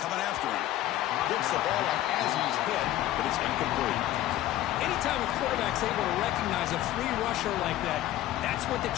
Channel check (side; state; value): right; quieter; 14.0 dB